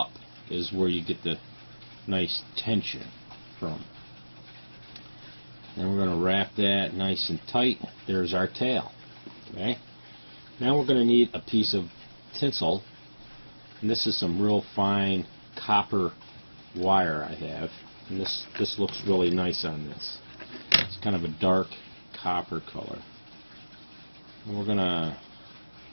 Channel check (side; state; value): both; inverted; correlation -1.00